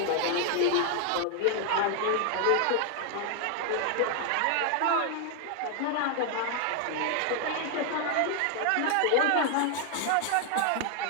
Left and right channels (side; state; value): both; different; correlation 0.00